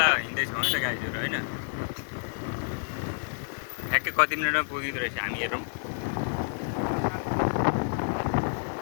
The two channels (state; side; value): silent; right; digital silence